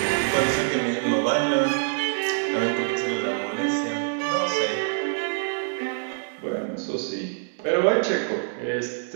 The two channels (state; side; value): silent; left; digital silence